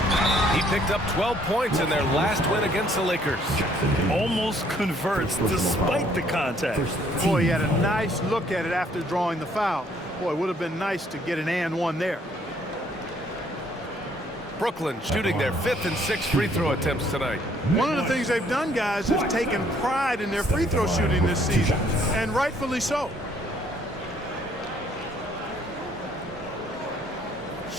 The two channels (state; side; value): normal; both; correlation 0.64